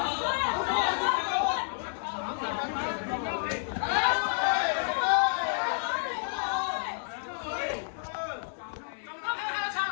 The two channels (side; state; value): right; silent; digital silence